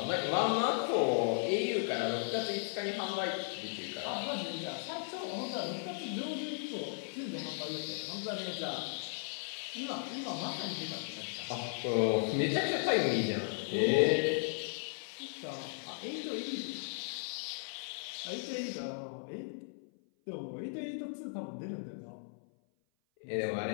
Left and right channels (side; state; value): right; silent; 54 dB below the other